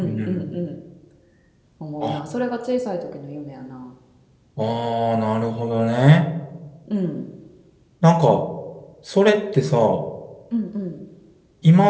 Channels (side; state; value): both; identical; correlation 1.00